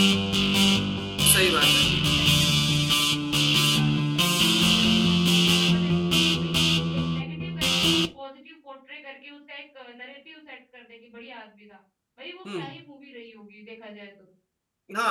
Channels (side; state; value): both; identical; correlation 1.00